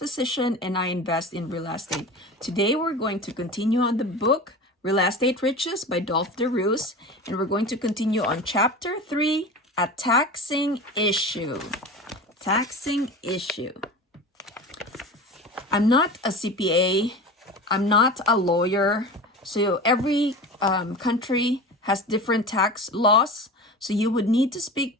and I invest in real estate. Today we're going to continue on the book Real Estate Riches by Dolf Roos, and we're going to continue on Chapter 3, A Taxing Issue. Taxing Issue. I'm not a CPA. I'm not a lawyer. So every country has different tax laws. So you would need to speak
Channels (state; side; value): normal; both; correlation 0.32